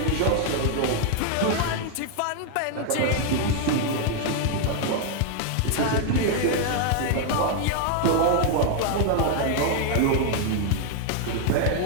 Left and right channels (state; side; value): different; both; correlation 0.00